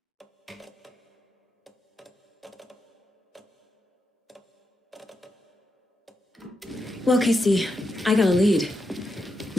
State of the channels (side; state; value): both; normal; correlation 0.85